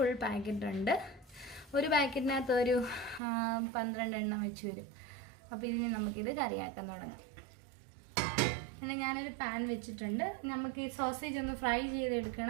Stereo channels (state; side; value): drops out; left; at 3.2 s